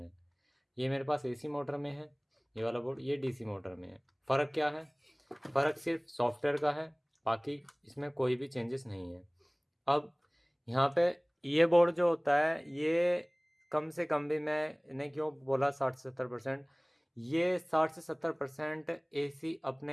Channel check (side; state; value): both; identical; correlation 1.00